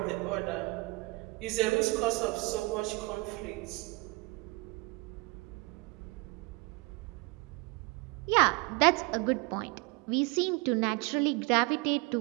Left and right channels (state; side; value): quieter; left; 25.4 dB